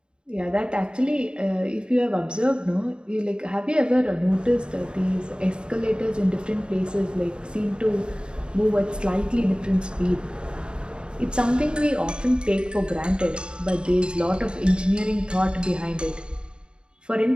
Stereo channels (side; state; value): left; late; 0.051 ms